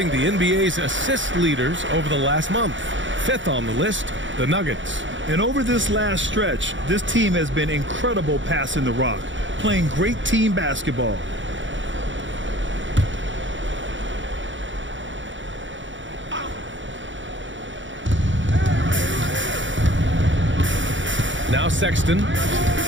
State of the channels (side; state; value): left; late; 0.55 ms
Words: the NBA's assist leaders over the last month. 5th on the list, the Nuggets. And over this last stretch, this team has been incredible passing the rock, playing great team basketball. Now Sexton,